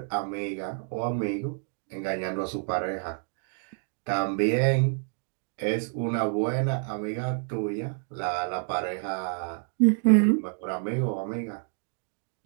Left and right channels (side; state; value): left; silent; 59 dB below the other